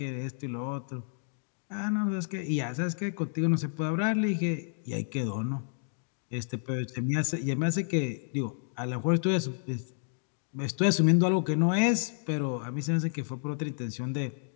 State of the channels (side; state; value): right; silent; digital silence